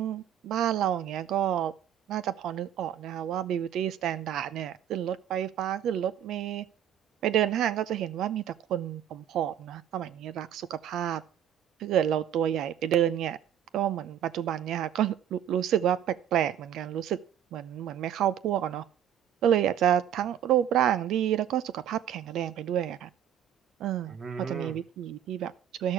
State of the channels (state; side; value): quieter; left; 10.2 dB